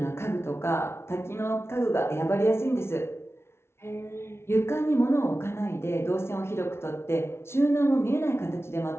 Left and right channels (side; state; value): right; late; 0.12 ms